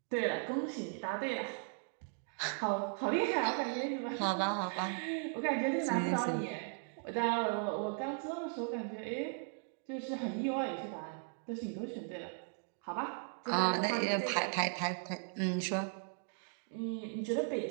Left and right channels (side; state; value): left; silent; 53 dB below the other